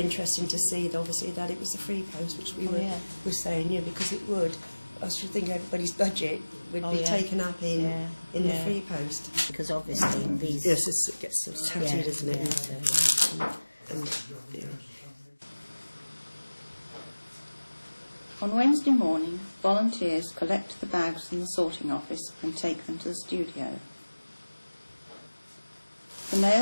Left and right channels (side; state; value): both; inverted; correlation -1.00